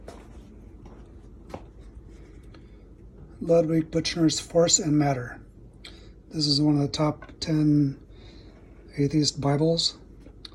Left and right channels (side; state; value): both; identical; correlation 1.00